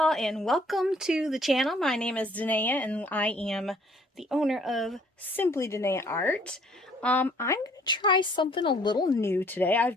and welcome to the channel. My name is Dinaya and I am the owner of Simply Dinaya Art. I'm going to try something a little new today. I've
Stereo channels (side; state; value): both; normal; correlation 0.60